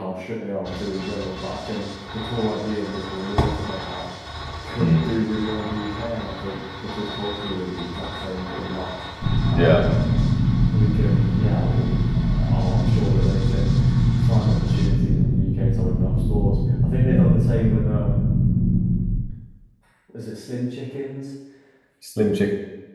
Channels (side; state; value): both; identical; correlation 1.00